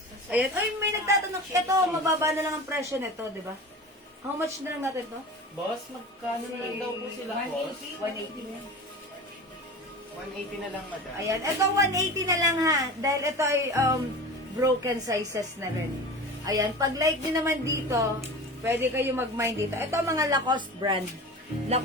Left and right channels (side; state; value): both; normal; correlation 0.33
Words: Ayan. Ay, may nagtatanong. Ito, mababa na lang ang presyo nito, di ba? How much na lang natin to? Boss, magkano na lang daw po sila, boss? 180 na. 180 na lang, madam. Ayan. Ito, 180 na lang ha. Dahil ito ay broken sizes na rin. Ayan. Pag like din naman dito, pwede kayo mag-mine dito. Ito mga Lacoste brand.